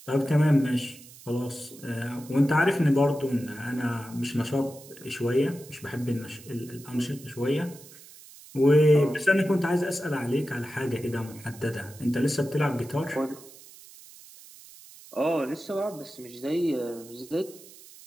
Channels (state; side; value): noise; right; hiss, 20 dB below the sound